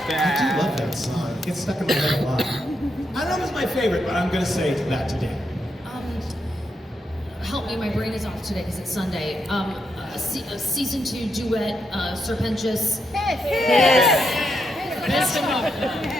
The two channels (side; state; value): both; normal; correlation 0.81